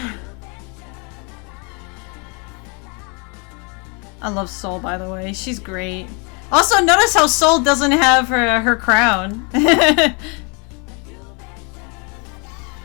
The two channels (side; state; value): right; quieter; 33.1 dB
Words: I love Soul, by the way. She's great. Also, notice how Soul doesn't have her crown. Oh